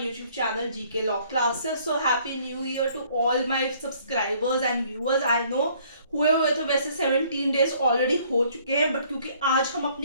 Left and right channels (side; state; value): both; inverted; correlation -0.61